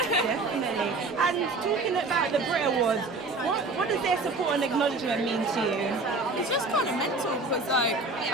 Definitely. And talking about the Brit Awards, what does their support and acknowledgement mean to you? It's just kind of mental because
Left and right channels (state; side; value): quieter; left; 3.3 dB